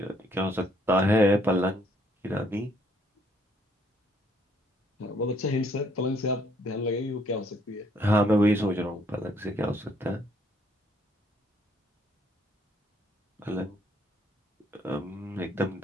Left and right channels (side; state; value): both; normal; correlation 0.67